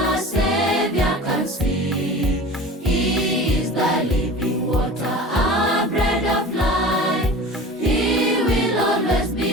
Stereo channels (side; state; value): both; normal; correlation 0.37